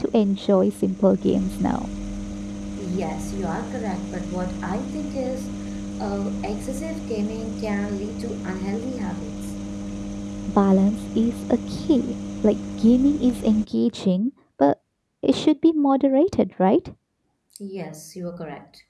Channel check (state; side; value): identical; both; correlation 1.00